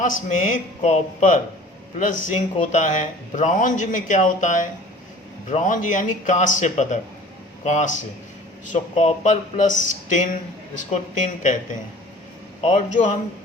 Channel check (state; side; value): normal; both; correlation 0.46